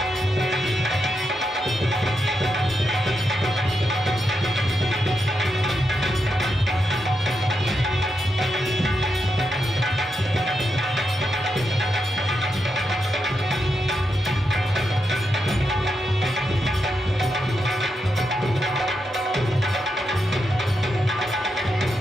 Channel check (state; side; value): normal; both; correlation 0.84